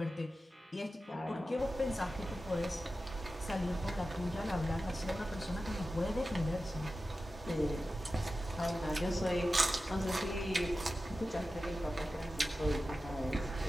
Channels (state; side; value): normal; both; correlation 0.94